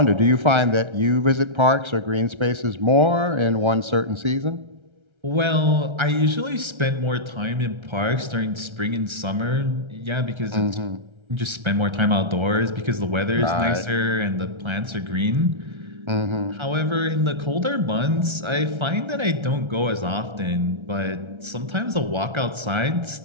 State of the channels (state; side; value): late; left; 1.3 ms